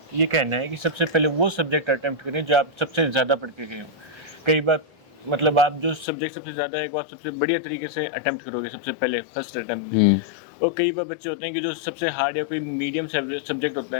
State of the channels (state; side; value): drops out; right; at 6.1 s